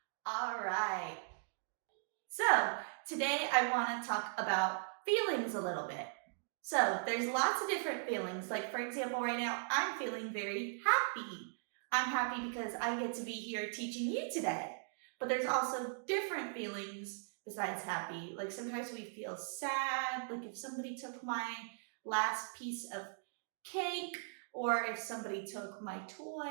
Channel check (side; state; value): left; silent; digital silence